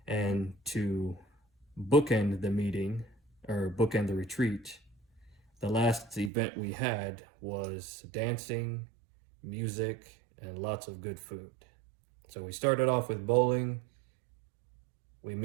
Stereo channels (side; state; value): left; drops out; at 6.3 s